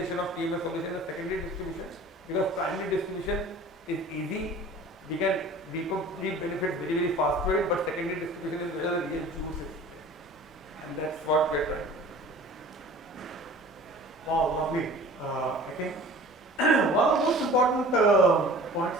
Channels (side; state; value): both; normal; correlation 0.44